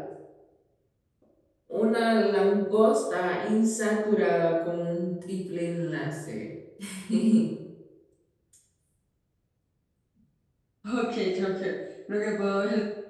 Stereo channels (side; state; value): both; identical; correlation 1.00